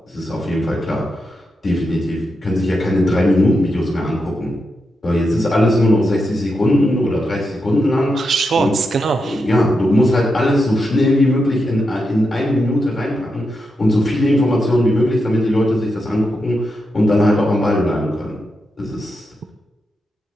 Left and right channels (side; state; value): both; normal; correlation 0.86